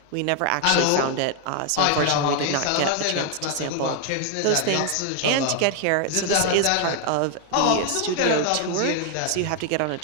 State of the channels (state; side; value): different; both; correlation 0.01